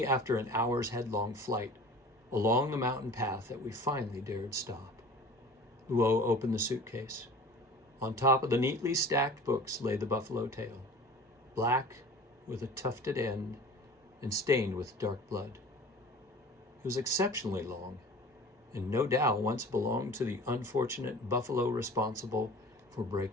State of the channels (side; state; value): both; normal; correlation 0.41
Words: after an hour's headlong flight along the mountain path that we finally dared stop. Luo opened the suitcase. On top of the neatly stacked books lay the buffalo tail, black with a tufted end and stained with dark blood. It was exceptionally long, and no doubt once belonged to the unfortunate buffalo responsible for